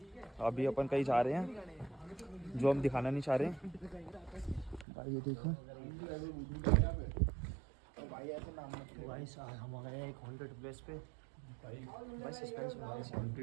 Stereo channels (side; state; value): left; drops out; at 4.9 s